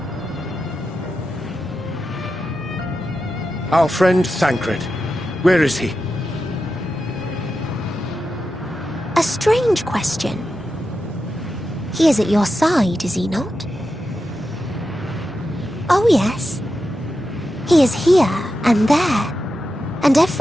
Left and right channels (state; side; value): normal; both; correlation 0.89